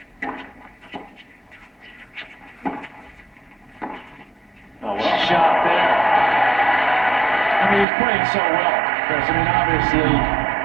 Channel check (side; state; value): left; drops out; at 7.9 s